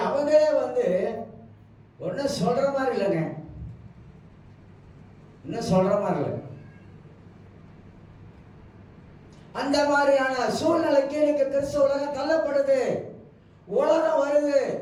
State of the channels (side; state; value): both; identical; correlation 1.00